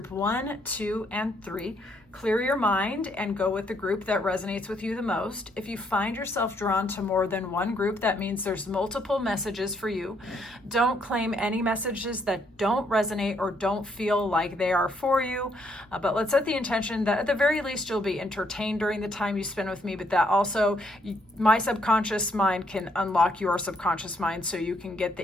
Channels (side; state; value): both; normal; correlation 0.72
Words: 1, 2, and 3. Clear your mind and go with the group that resonates with you the most. If you find yourself drawn to more than one group, that means there's multiple messages for you. Don't claim any messages that don't resonate or don't feel like they are for you. But let's set the intention that at the very least you'll be entertained during the time you spend with me, but that also my subconscious mind can unlock your subconscious mind so you can get